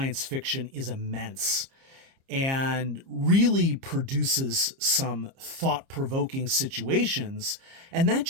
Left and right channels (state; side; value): late; left; 30 ms